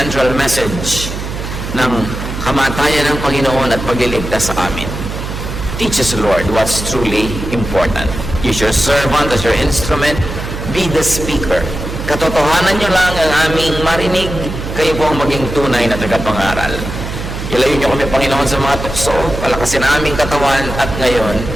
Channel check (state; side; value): noise; right; hum, 7 dB below the sound